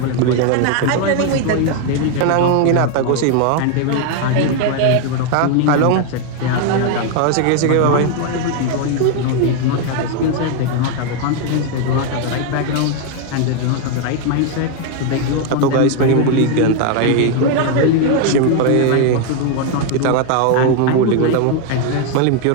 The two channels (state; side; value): different; both; correlation 0.01